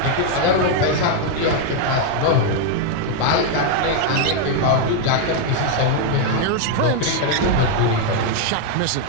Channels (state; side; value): different; both; correlation 0.00